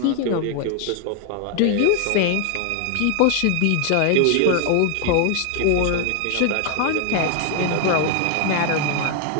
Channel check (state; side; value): different; both; correlation 0.00